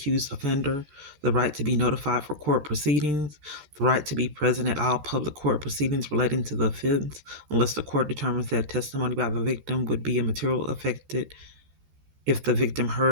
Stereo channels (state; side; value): late; left; 13 ms